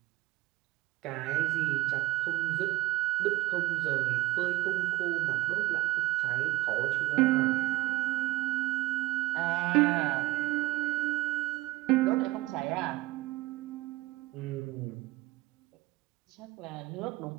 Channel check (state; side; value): quieter; left; 17.7 dB